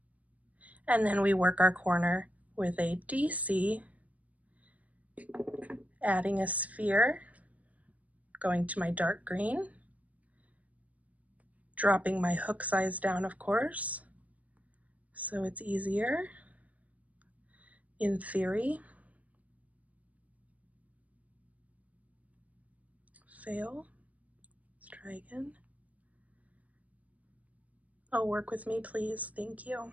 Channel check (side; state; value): left; late; 0.070 ms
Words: and then we work our corner with a DC, adding a sphere, going to my dark green, dropping my hook size down, of course, so it's easier in theory. Fail. Let's try again. Oh, work with me, please. Thank you.